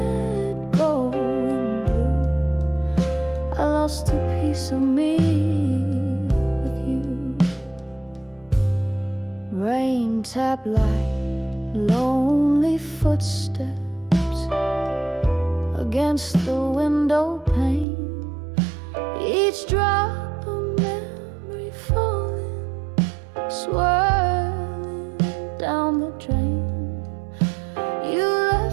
Go in blue, I lost a piece of me with you. Rain tap like lonely footsteps against the window pane, each drop a memory falling, swirling down the drain. You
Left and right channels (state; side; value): drops out; left; at 17.9 s